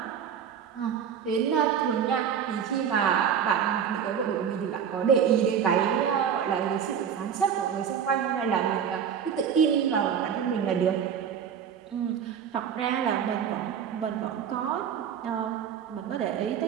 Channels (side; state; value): left; quieter; 8.0 dB